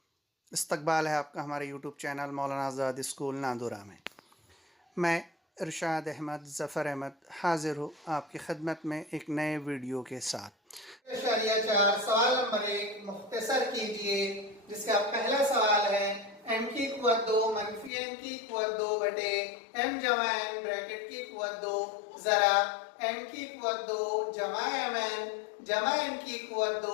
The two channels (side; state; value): right; drops out; at 17.9 s